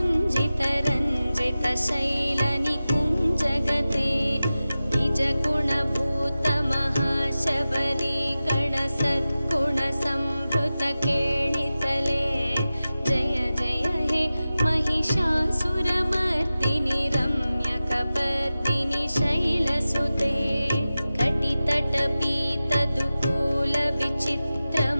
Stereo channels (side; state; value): both; inverted; correlation -0.95